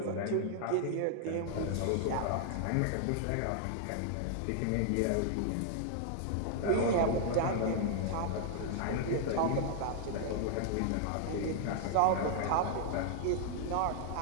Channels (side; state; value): both; different; correlation 0.00